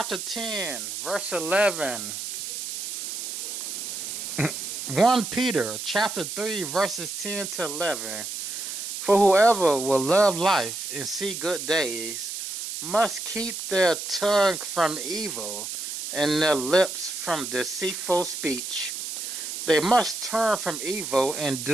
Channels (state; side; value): noise; right; hiss, 6 dB below the sound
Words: 10, verse 11. 1 Peter, chapter 3, verses 10 to 11. For whoever will love life and see good days must keep their tongue from evil and their lips from deceitful speech. They must turn from evil and